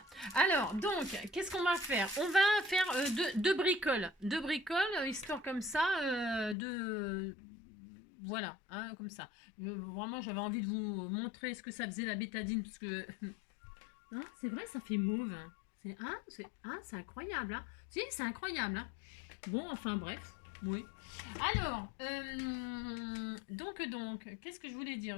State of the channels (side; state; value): right; drops out; at 6.6 s